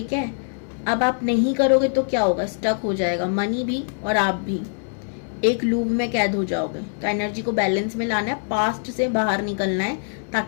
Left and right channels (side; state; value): right; silent; digital silence